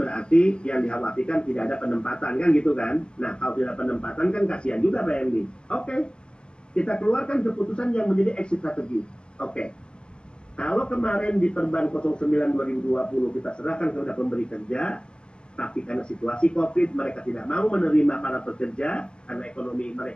yang dikhawatirkan tidak ada penempatan kan gitu kan. Nah, kalau tidak penempatan kan kasihan juga PMI. Oke, kita keluarkan keputusan yang menjadi exit strategi. Oke. Kalau kemarin di Perban 09 2020 kita serahkan kepada pemberi kerja, tapi karena situasi COVID mereka tidak mau menerima para pekerja karena ekonomi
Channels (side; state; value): right; late; 0.051 ms